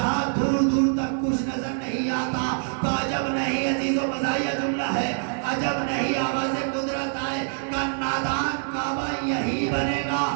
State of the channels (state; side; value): silent; left; digital silence